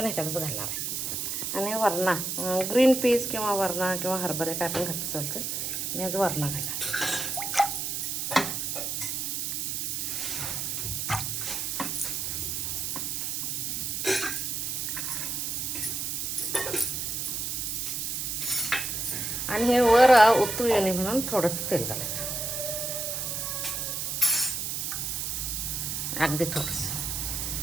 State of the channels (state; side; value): noise; right; hiss, 2 dB below the sound